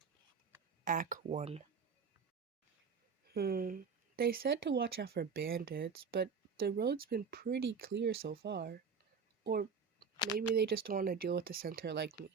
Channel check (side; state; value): left; quieter; 5.7 dB